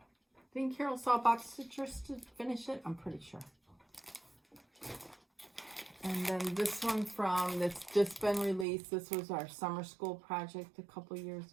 think Carol saw Box Citrus to finish it. I'm pretty sure. And then this one that's just been released. This was our summer school project a couple years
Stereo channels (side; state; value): left; drops out; at 8.7 s